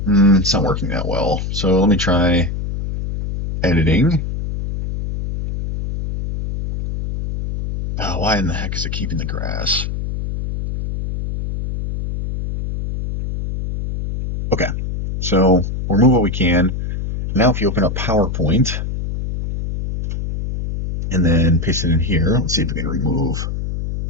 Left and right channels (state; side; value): noise; left; hum, 4 dB below the sound